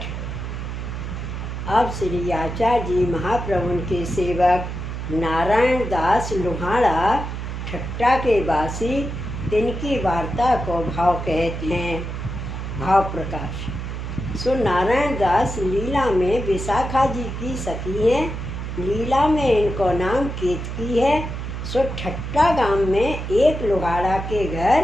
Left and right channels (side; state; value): right; noise; hum, 6 dB below the sound